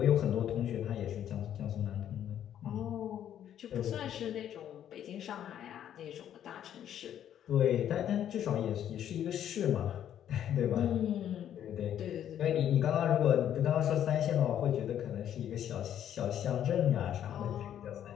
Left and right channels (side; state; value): right; quieter; 10.3 dB